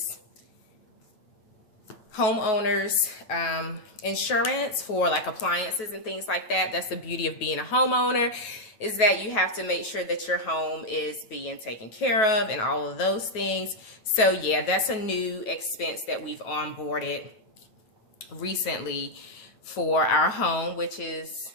homeowners insurance for like appliances and things like that. That's the beauty of being a homeowner, is that you have to make sure that your home is being taken care of and all of those things. So yeah, that's a new expense that we've onboarded recently for our home, which is,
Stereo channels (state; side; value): late; right; 9.3 ms